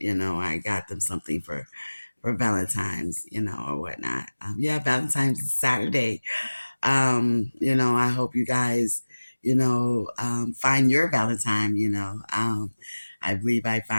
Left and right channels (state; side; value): inverted; both; correlation -1.00